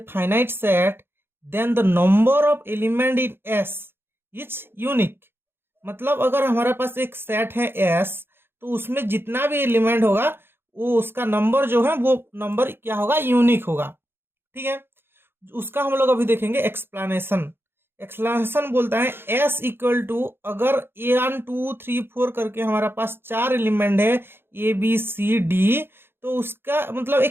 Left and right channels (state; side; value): late; left; 0.11 ms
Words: finite set then the number of element in S is unique। मतलब अगर हमारे पास एक सेट है S तो उसमें जितना भी एलिमेंट होगा वो उसका नंबर जो है वो नंबर क्या होगा, यूनिक होगा। ठीक है, उसका हम लोग अभी देखेंगे एक्सप्लेनेशन। एक्सप्लेनेशन बोलता है S इक्वल टू, अगर 1 2 3 4 करके हमारा पास 4 एलिमेंट है ABCD, तो उसका मतलब